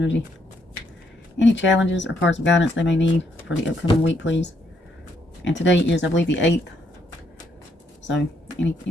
Any challenges or cards of guidance they may need for the upcoming week, please? And today is, I believe, the 8th. So,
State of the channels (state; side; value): normal; both; correlation 0.73